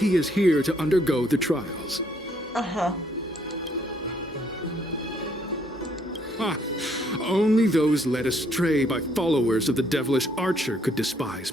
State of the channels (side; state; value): both; normal; correlation 0.68